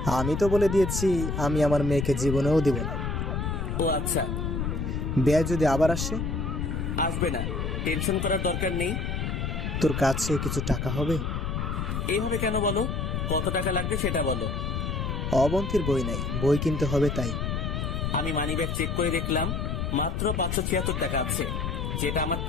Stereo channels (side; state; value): left; noise; rumble, 2 dB below the sound